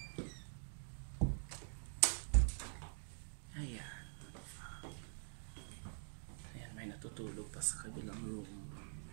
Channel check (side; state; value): left; silent; digital silence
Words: May natutulog pa sa kabilang room.